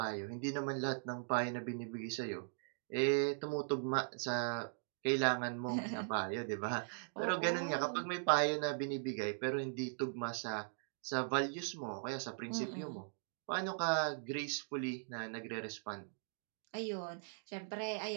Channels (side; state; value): left; silent; digital silence